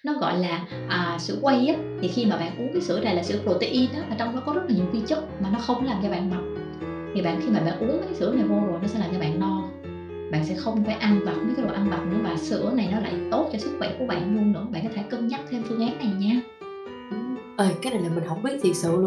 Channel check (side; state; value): both; identical; correlation 1.00